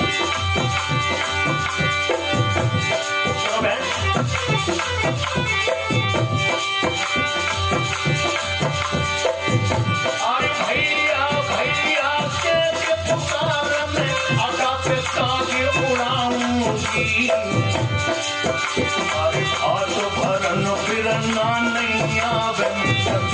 अरे भैया भैया के पुकार में आकाश ताज उड़ाऊंगी। अरे भात भरन फिरना नहीं आवे,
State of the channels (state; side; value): identical; both; correlation 1.00